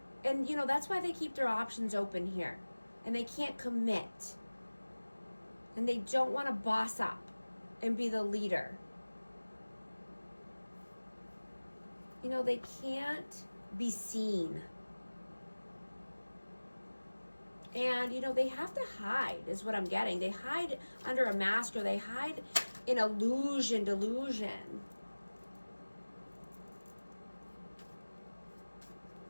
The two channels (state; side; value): inverted; both; correlation -1.00